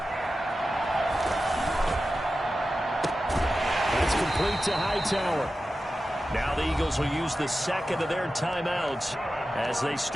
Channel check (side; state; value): both; normal; correlation 0.93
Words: That's complete to Hightower. Now the Eagles will use the second of their timeouts as they